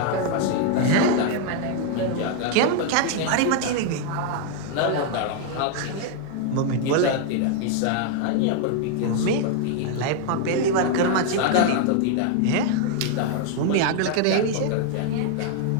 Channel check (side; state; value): both; different; correlation 0.00